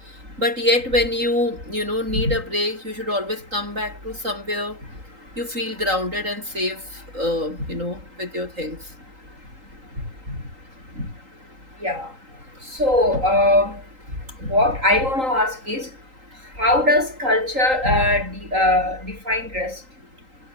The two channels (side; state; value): left; late; 3.8 ms